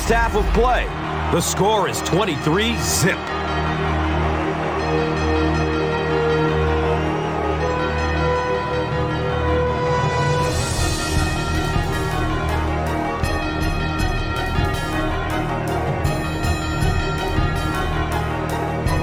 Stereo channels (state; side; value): identical; both; correlation 1.00